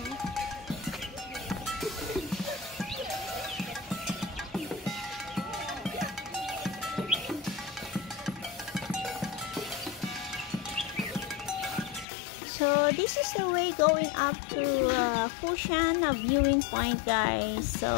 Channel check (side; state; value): right; drops out; at 12.1 s